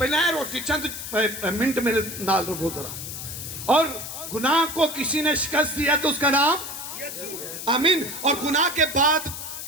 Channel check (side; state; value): left; noise; hiss, 8 dB below the sound